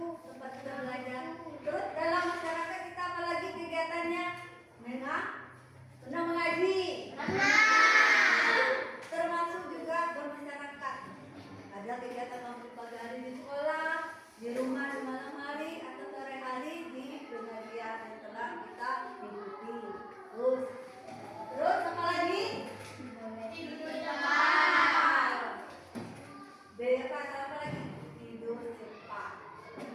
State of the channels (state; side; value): identical; both; correlation 1.00